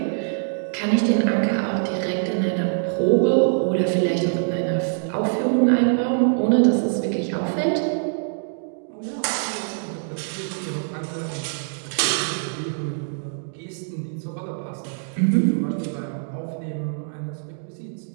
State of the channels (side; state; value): left; silent; digital silence